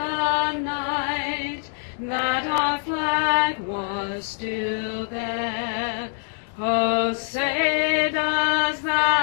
night that our flag was still there. Oh, say does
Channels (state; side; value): silent; right; digital silence